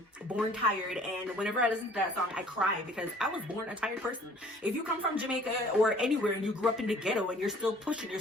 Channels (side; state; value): both; normal; correlation 0.54